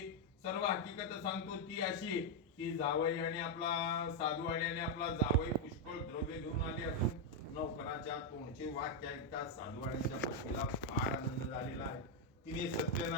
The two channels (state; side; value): normal; both; correlation 0.01